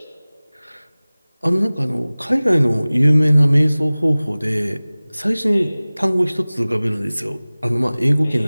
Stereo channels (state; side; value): inverted; both; correlation -0.99